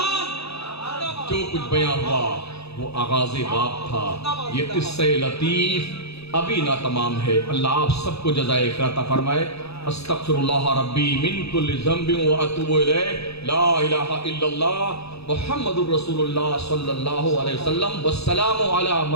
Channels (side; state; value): right; late; 0.78 ms